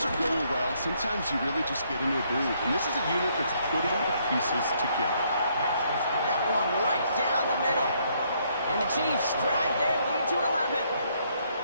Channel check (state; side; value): inverted; both; correlation -0.70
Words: are going well, sometimes you really just get into a groove. And this is a unit that's putting the pieces together. That one right down the middle. And the Chiefs drive their lead to 11.